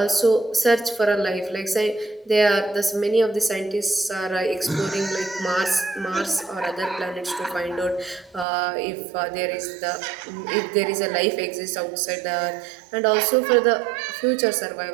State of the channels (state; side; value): drops out; left; at 8.5 s